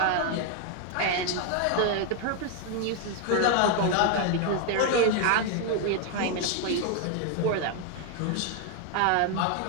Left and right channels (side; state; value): both; different; correlation 0.01